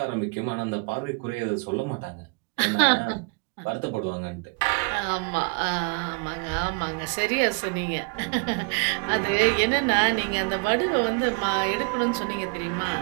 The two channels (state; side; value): quieter; left; 34.0 dB